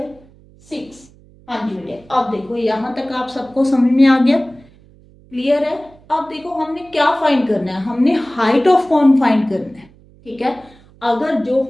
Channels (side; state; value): right; noise; hum, 27 dB below the sound